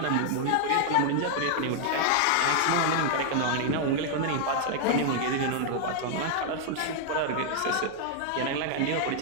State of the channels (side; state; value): both; different; correlation 0.00